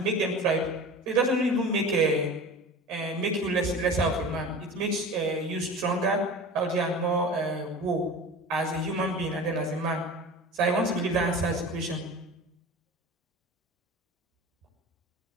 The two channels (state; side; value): normal; both; correlation 0.35